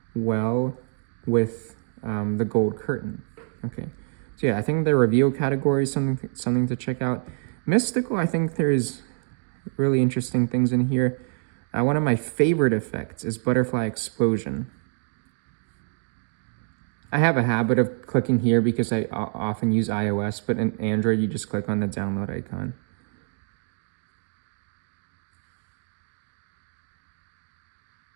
well with the gold curtain. Okay. So yeah, I think the reveal category is something to check out. Mystical, I think there's really interesting things in here. One of my favorite effects is butterfly explosion. I have a habit of clicking here because I often use iOS, but in Android, you just click on the download icon.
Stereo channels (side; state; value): left; silent; 59 dB below the other